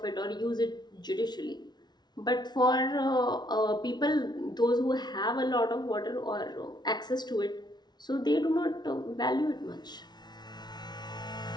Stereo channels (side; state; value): right; late; 0.20 ms